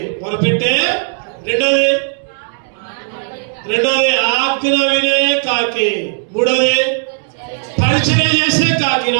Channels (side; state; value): left; silent; digital silence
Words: మొరపెట్టే. రెండోది ఆజ్ఞ వినే కాకి. మూడోది పరిచయం చేసే కాకి.